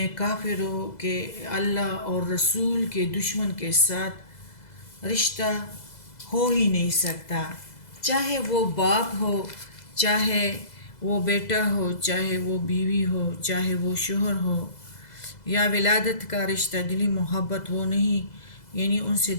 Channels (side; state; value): right; late; 2.0 ms